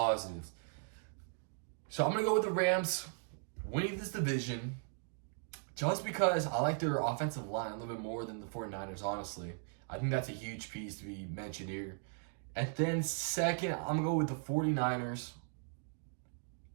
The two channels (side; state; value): left; silent; 53 dB below the other